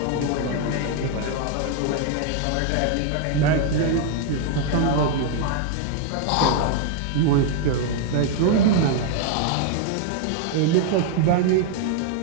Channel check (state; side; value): different; both; correlation 0.00